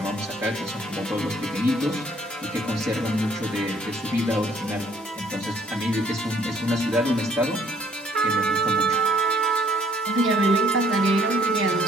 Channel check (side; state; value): both; normal; correlation 0.62